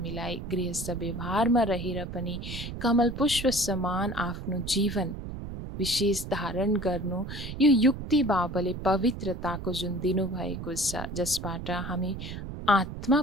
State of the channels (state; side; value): noise; right; rumble, 8 dB below the sound